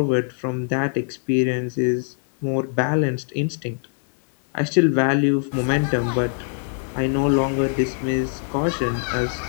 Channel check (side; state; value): right; silent; 59 dB below the other